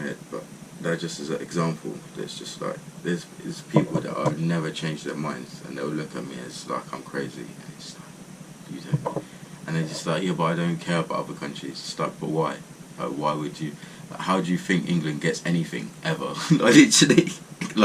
head. But that just is an example. There's just, like, there's people that I've never changed their minds, and they'll look at me as like I'm crazy, and it's like, you don't. And they're just like, yeah, but I don't care about other countries. It's like, but why? Like, why would you? Like, how do you think England gets anything ever? Like, literally,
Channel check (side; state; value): both; identical; correlation 1.00